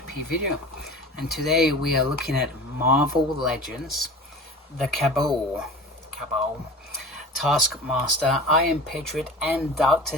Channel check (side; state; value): both; normal; correlation 0.37